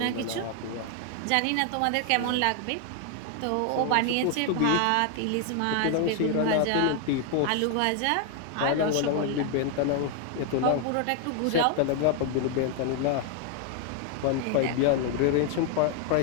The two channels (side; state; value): both; different; correlation 0.00